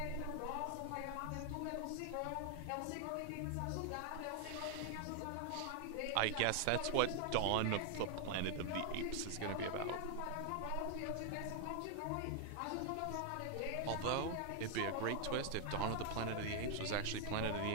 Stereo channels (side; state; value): both; different; correlation 0.00